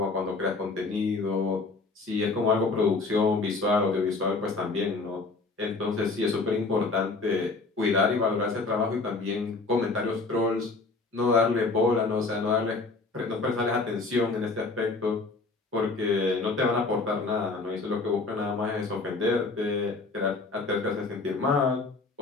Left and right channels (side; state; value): right; quieter; 3.8 dB